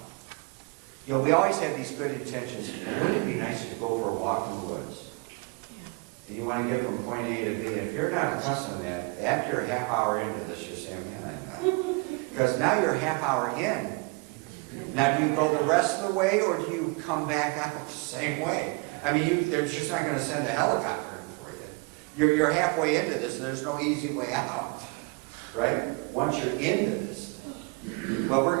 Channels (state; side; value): quieter; left; 30.2 dB